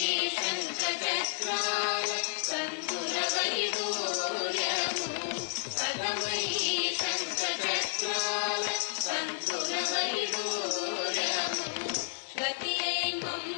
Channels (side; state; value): right; silent; digital silence